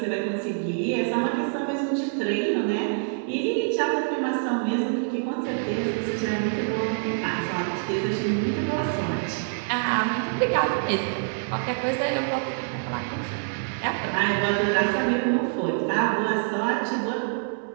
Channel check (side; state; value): left; silent; 61 dB below the other